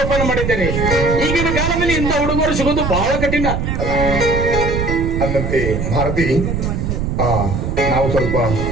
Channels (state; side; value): noise; right; rumble, 2 dB below the sound